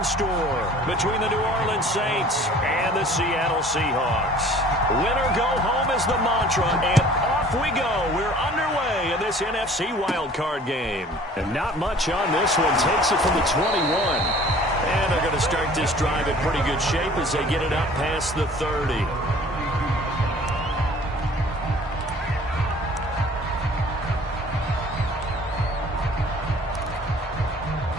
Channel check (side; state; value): both; normal; correlation 0.50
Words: store between the New Orleans Saints and the Seattle Seahawks. Win or go home is the mantra, and off we go. We're underway in this NFC Wild Card game. And not much on this one. Takes it from the 21. And they're going to start this drive in pretty good shape as they get it up past the 30.